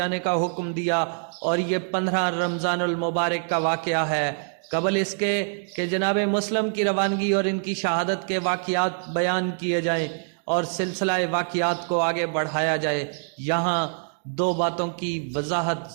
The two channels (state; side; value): silent; left; 62 dB below the other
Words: کا حکم دیا، اور یہ 15 رمضان المبارک کا واقعہ ہے۔ قبل اس کے کہ جناب مسلم کی روانگی اور ان کی شہادت کے واقعات بیان کیے جائیں اور سلسلہ واقعات کو آگے بڑھایا جائے، یہاں 2 باتوں کی وضاحت